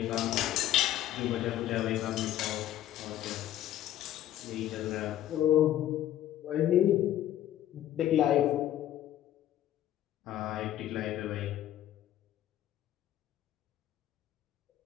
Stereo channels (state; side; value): quieter; right; 12.4 dB